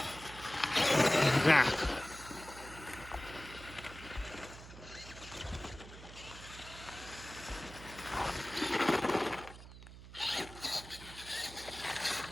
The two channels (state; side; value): noise; right; hum, 15 dB below the sound